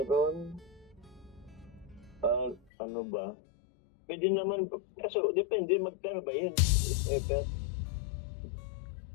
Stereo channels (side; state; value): right; drops out; at 2.6 s